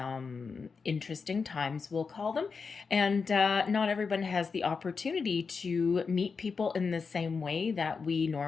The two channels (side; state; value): right; quieter; 5.1 dB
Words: interesting times, we'll call them. And not everyone has the opportunity to meet people in the same way that we